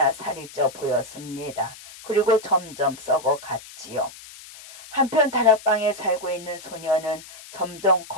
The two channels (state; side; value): noise; left; hiss, 17 dB below the sound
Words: 살이 쪄 보였습니다. 그리고 점점 썩어갔지요. 한편 다락방에 살고 있는 소녀는 점점